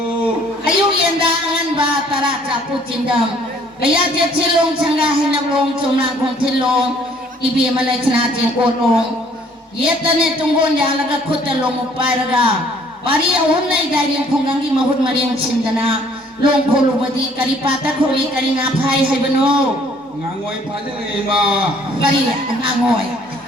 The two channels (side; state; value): both; normal; correlation 0.59